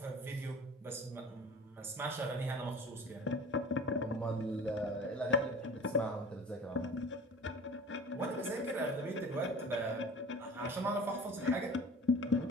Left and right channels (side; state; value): both; normal; correlation 0.41